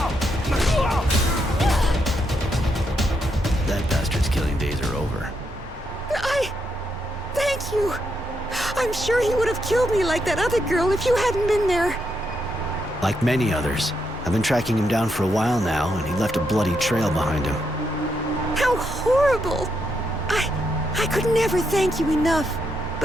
That bastard's killing days are over. Thank you. I'm sure he would have killed me like that other girl if you hadn't been there. Like many others. I've been tracking him down for a while now, and he left a bloody trail behind him. How horrible! I could never thank you enough.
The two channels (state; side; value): normal; both; correlation 0.80